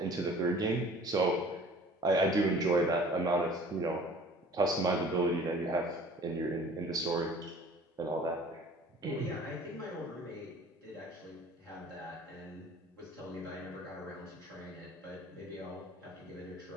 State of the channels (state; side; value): normal; both; correlation 0.48